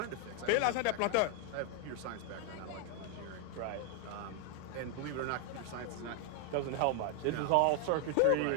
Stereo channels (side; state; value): both; different; correlation 0.00